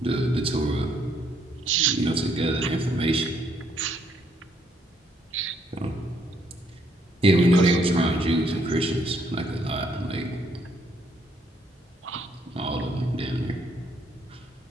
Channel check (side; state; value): both; normal; correlation 0.70